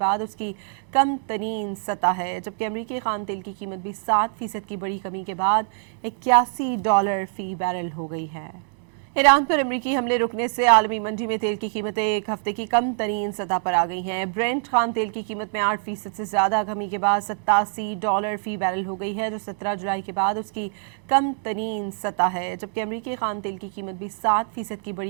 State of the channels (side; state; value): left; silent; digital silence